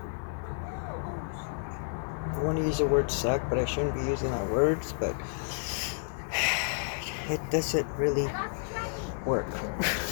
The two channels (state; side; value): silent; right; 57 dB below the other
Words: I want to use the word suck, but I shouldn't be using that words, but it doesn't really work.